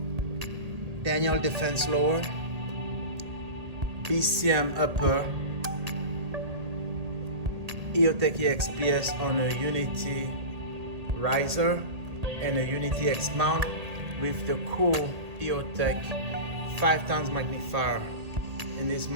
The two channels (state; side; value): late; left; 1.8 ms